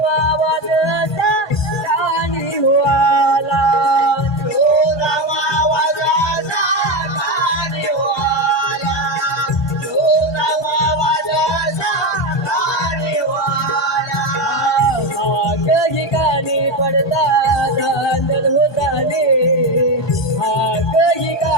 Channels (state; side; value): normal; both; correlation 0.15